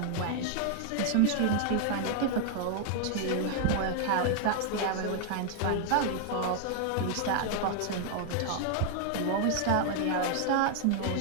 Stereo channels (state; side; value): different; both; correlation 0.00